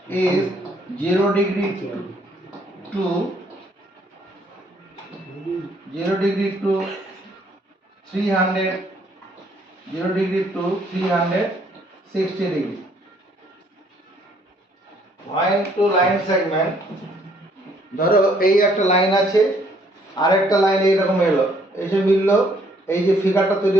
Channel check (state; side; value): normal; both; correlation 0.65